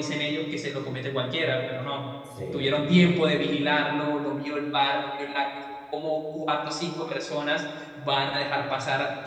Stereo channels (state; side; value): identical; both; correlation 1.00